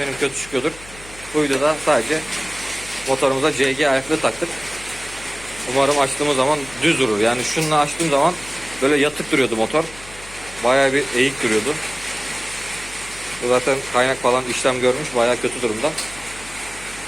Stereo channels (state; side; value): noise; left; hum, 19 dB below the sound